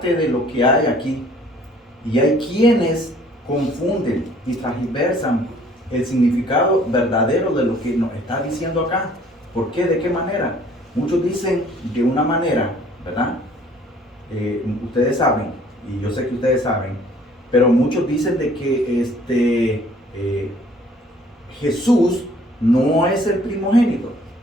de lo que hay aquí, y hay quienes confunden y transversan el significado verdadero de lo que nos está diciendo acá. ¿Por qué? ¿De qué manera? Muchos dicen de una manera, ¿verdad? Ustedes saben, y yo sé que ustedes saben, pero muchos dicen de que Jesús no es el primogénito,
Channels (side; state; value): both; normal; correlation 0.57